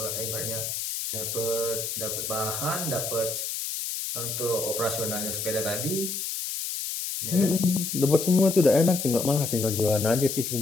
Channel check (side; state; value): left; noise; hiss, 4 dB below the sound